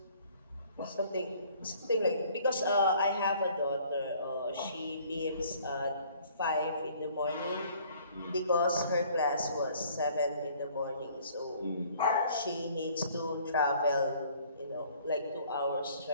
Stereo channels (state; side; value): inverted; both; correlation -0.57